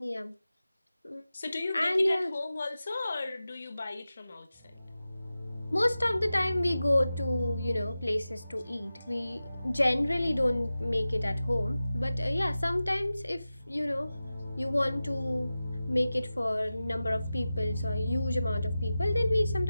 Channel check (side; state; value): both; inverted; correlation -0.95